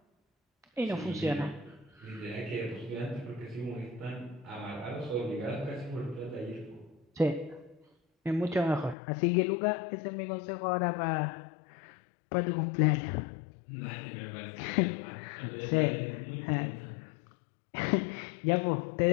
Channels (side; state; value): right; drops out; at 9.0 s